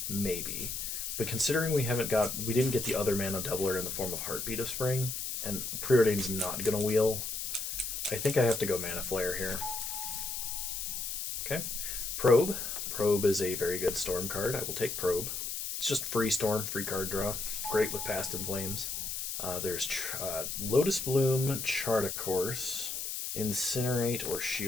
maybe. But considering we didn't get the other mana doubler in the form of Heartbeat of Spring, and Preordain's not gonna wheel, I think I have to go Mana Flare here. Okay. Probe. Probe is a very good Storm card. I will take Probe. It's just free Storm, free card draw. Great with Past in Flames. There's Lotus Bloom, Chart a Course, Incinerate, or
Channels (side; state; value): left; noise; hiss, 4 dB below the sound